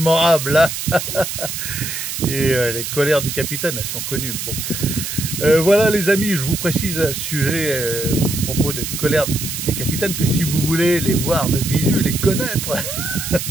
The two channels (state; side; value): noise; right; hiss, 5 dB below the sound